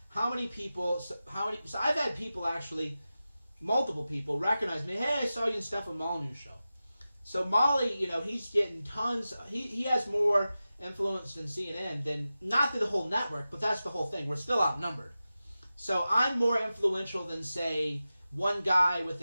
How many people? So I've had people actually, multiple people recognize me. Hey, I saw you in Stefan Molyneux show. So Molly, he's getting tons. He has more influence than CNN. Than not the whole network, but that's the whole thing. We're still outnumbered. So I'm more influential than, say, one guy with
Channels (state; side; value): inverted; both; correlation -0.94